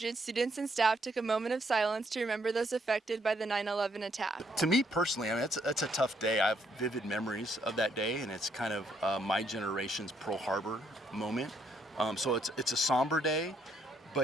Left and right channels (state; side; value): normal; both; correlation 0.72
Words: students and staff took a moment of silence to remember those affected by the 9/11 attack. To me personally, I mean, it's a tough day. I have vivid memories of that day, and it's kind of my generation's Pearl Harbor moment. So it's a somber day,